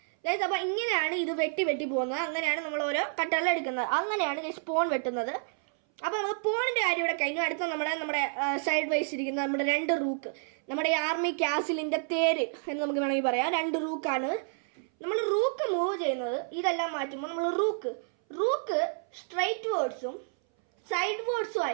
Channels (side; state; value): left; silent; 58 dB below the other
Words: അപ്പൊ ഇങ്ങനെയാണ് ഇത് വെട്ടി പോകുന്നത്. അങ്ങനെയാണ് നമ്മൾ ഓരോ കട്ടകൾ എടുക്കുന്നത്. അങ്ങനെയാണ് പോൺ വെട്ടുന്നത്. അപ്പൊ നമുക്ക് പോണിന്റെ കാര്യം ഇവിടെ കഴിഞ്ഞു. അടുത്ത നമ്മുടെ സൈഡ് വൈസ് ഇരിക്കുന്ന നമ്മുടെ 2 റൂക്ക്, നമ്മുടെ ഈ ആർമി കാസിലിന്റെ തേര് എന്ന് നമുക്ക് വേണമെങ്കിൽ പറയാം. 2 റൂക്കാണ്. നമ്മൾ റൂക്ക് മൂവ് ചെയ്യുന്നത് ഇതെല്ലാം മാറ്റുമ്പോൾ നമ്മൾ റൂക്ക് സ്ട്രൈറ്റ് വേർഡ്സും സൈഡ് വേർഡ്സും